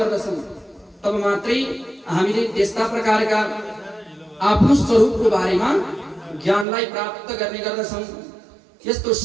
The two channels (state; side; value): drops out; left; at 6.7 s